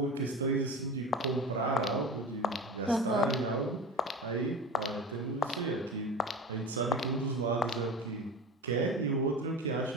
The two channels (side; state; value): both; normal; correlation 0.31